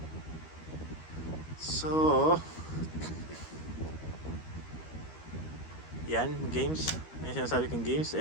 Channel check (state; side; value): late; right; 13 ms